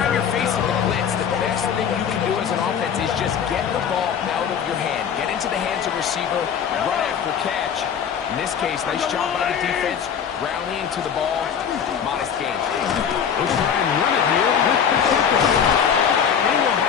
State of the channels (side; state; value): right; quieter; 7.8 dB